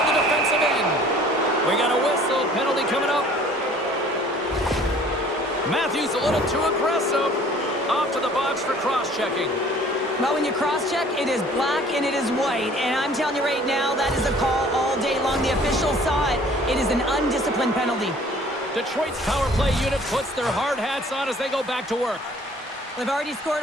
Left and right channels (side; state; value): both; normal; correlation 0.53